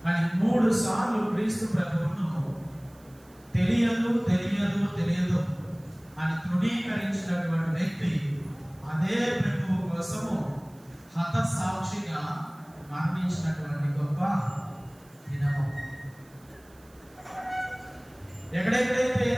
అని 3 సార్లు క్రీస్తు ప్రభువును తెలియదు తెలియదు తెలియదు అని తృణీకరించినటువంటి వ్యక్తి అదే ప్రభువు కోసము హతసాక్షిగా మరణించినటువంటి గొప్ప దినము. ఎక్కడెక్కడైతే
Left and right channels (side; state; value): right; noise; hiss, 28 dB below the sound